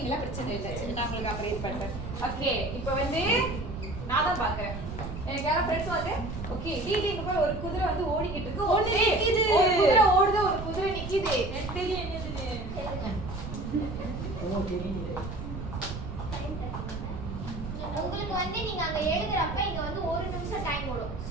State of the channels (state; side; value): noise; right; rumble, 7 dB below the sound